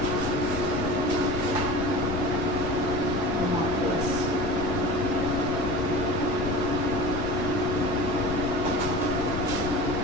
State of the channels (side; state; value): left; noise; rumble, 6 dB below the sound